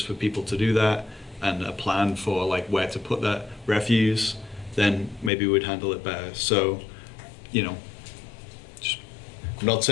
for people to do that and a plan for like where to put that refuse, then maybe we'd handle it better. So, I'm not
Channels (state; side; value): drops out; right; at 5.3 s